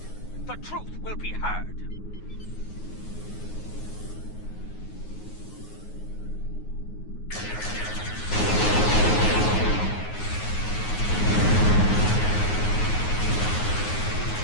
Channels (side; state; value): right; late; 9.5 ms